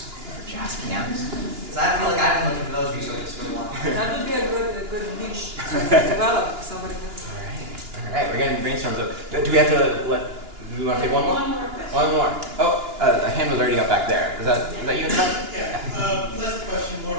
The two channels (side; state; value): left; late; 2.9 ms